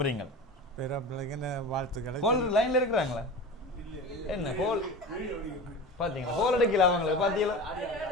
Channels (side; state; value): both; normal; correlation 0.31